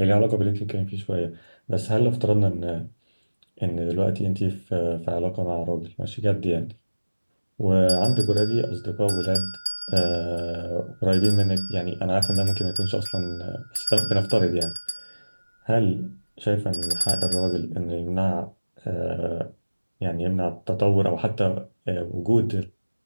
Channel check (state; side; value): inverted; both; correlation -1.00